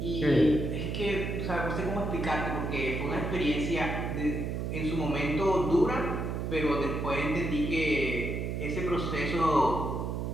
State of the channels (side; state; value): right; noise; hum, 2 dB below the sound